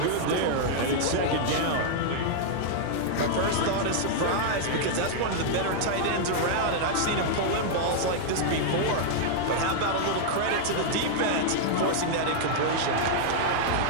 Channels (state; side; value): different; both; correlation -0.01